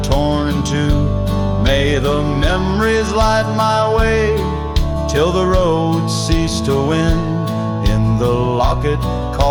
torn in two. May the memories light my way till the road ceased to wind. In the locket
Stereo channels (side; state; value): both; identical; correlation 1.00